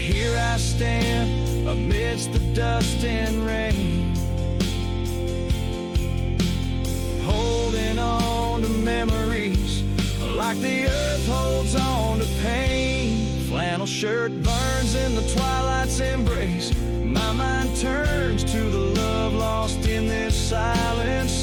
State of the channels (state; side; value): identical; both; correlation 1.00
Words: I stand amidst the dust and rain, holding on to memories like the earth holds on to pain. Flannel shirt burns in the twilight's embrace. My mind turns to the love lost in this silent,